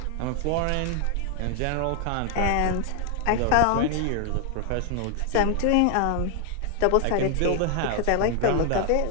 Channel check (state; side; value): different; both; correlation 0.00